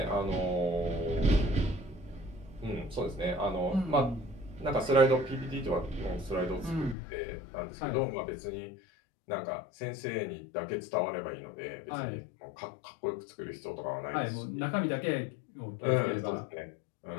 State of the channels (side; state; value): right; drops out; at 7.0 s